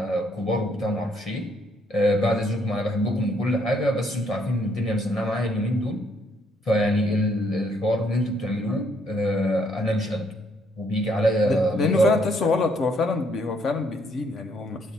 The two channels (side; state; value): both; normal; correlation 0.69